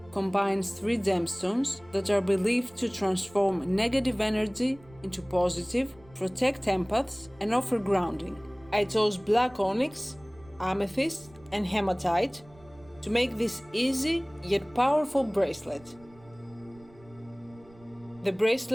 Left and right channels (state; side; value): noise; right; rumble, 25 dB below the sound